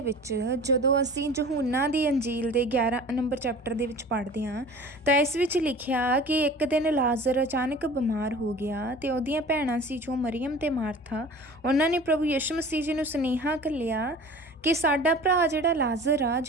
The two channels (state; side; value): normal; both; correlation 0.41